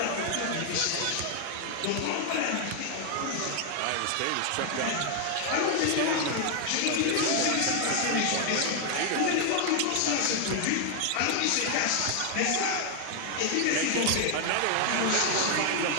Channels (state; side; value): different; both; correlation 0.00